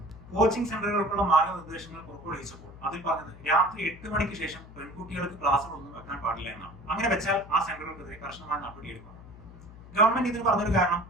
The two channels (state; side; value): noise; left; hum, 18 dB below the sound